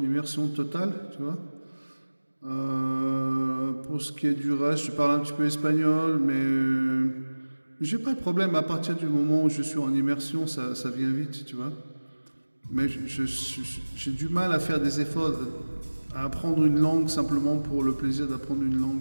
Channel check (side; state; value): both; inverted; correlation -1.00